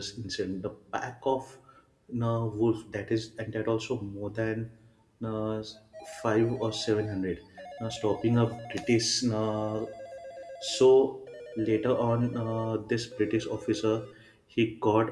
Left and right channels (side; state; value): both; identical; correlation 1.00